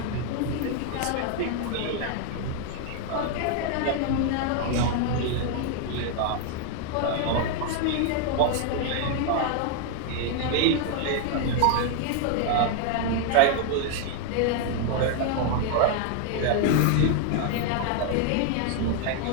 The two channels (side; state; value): both; different; correlation 0.00